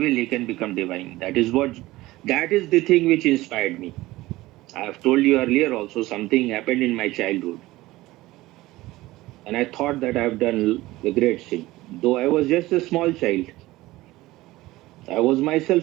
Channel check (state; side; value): quieter; left; 18.2 dB